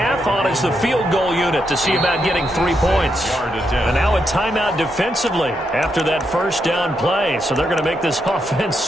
On is the field goal unit to see about getting 3 points. And now a timeout defensively after that first down play. So they're going to make this offense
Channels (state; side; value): normal; both; correlation 0.81